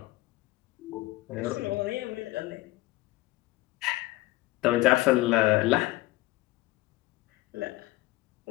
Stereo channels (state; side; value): quieter; right; 18.9 dB